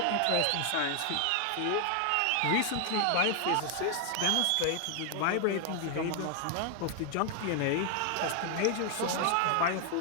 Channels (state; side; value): different; both; correlation 0.00